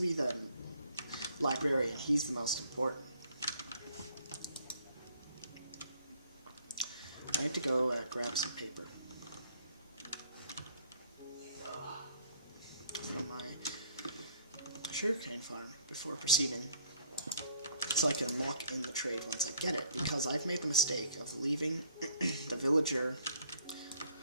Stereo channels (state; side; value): inverted; both; correlation -0.62